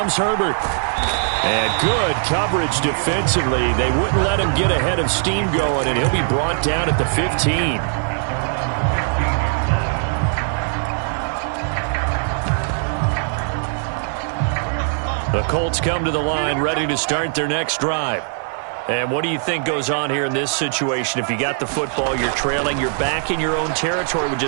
Herbert. And good coverage defensively. They wouldn't let him get ahead of steam going, and he'll be brought down at the 15. The Colts come to the line ready to start their next drive. And what do you think goes on here in this situation? If you got the football, you're trailing, you're back in your own territory with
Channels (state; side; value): silent; left; 62 dB below the other